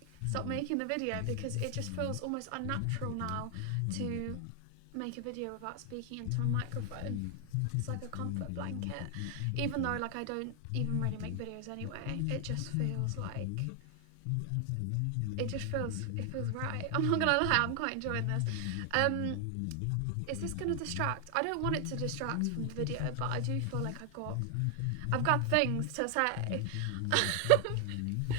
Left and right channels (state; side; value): different; both; correlation 0.00